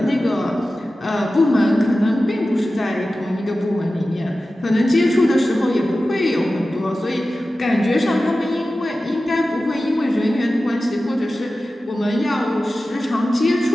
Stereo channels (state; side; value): normal; both; correlation 0.95